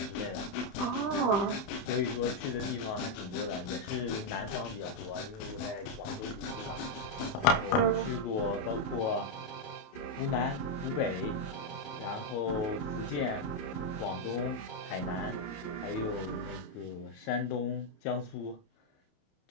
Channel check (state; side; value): late; right; 28 ms